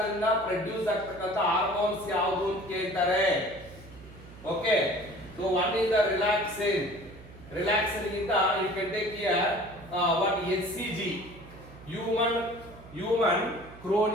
ದಿಂದ produce ಆಗ್ತಕ್ಕಂತ hormones ಯಾವುದು ಅಂತ ಕೇಳ್ತಾರೆ. Okay, so one is the relaxin. Relaxin ಗಿಂತ you can take here what HCG, human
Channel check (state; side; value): noise; right; hum, 19 dB below the sound